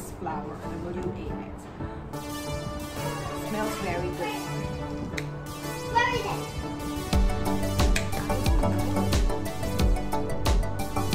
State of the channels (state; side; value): identical; both; correlation 1.00